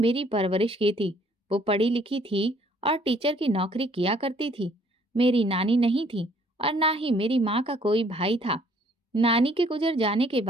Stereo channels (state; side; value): normal; both; correlation 0.62